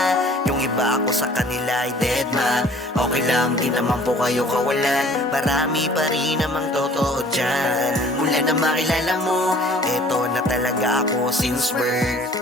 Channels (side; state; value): both; normal; correlation 0.51